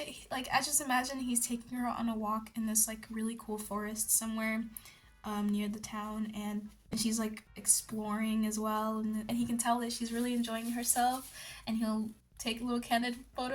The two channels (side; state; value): both; identical; correlation 1.00